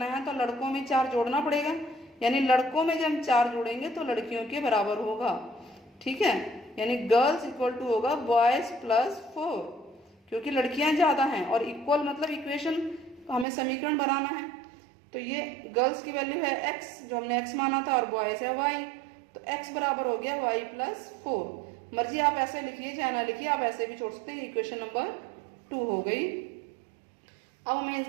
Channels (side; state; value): left; drops out; at 13.5 s